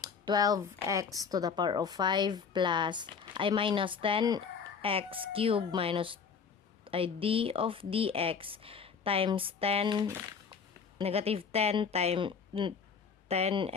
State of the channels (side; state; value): right; quieter; 6.0 dB